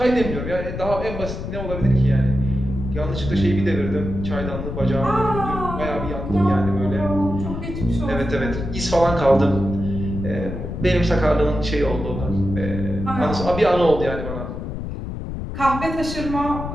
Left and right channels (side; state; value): left; noise; rumble, 6 dB below the sound